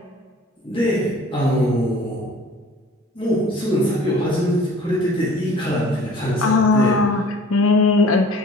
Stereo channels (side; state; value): both; normal; correlation 0.48